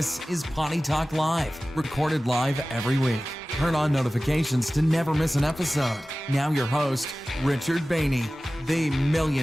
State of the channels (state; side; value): normal; both; correlation 0.97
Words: is Potty Talk Live, recorded live every week. Turn on notifications to never miss an episode. Now your host, Richard Bainey, the $1